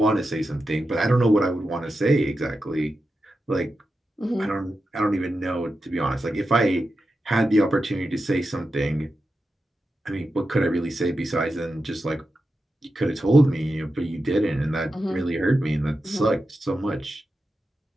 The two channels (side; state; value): both; normal; correlation 0.90